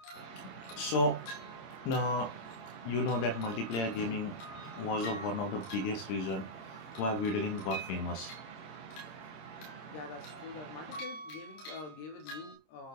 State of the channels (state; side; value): late; right; 26 ms